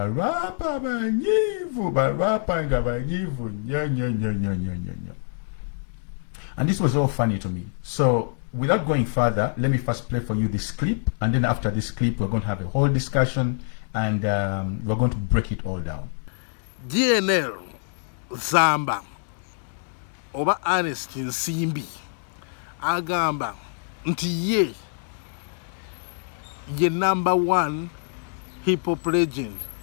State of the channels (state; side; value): silent; right; digital silence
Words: rapa banyivu, rapa ngaba nyivu, nya. And this was all funny to me. So without going further, let me first play for you this clip, and then after this clip, we're going to have a whole discussion, and we're going to break it all down. Gnl Zamba oba Ernest Nsimbi agamba nti ye #1 hip-hop legend